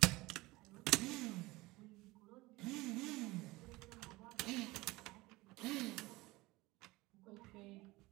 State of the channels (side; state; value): left; quieter; 20.9 dB